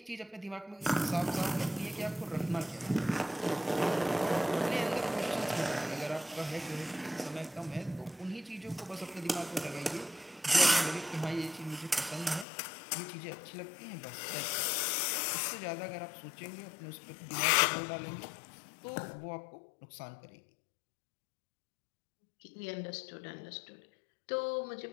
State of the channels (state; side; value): drops out; right; at 12.5 s